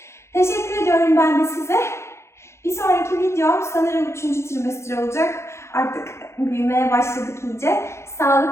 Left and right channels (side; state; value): right; late; 0.13 ms